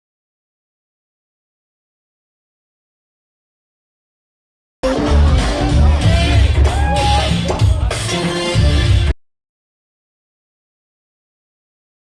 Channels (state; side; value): identical; both; correlation 1.00